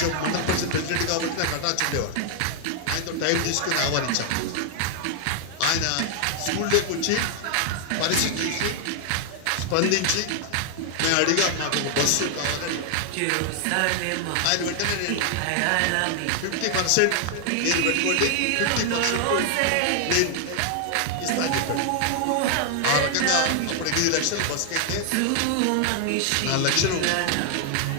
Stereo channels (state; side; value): different; both; correlation 0.00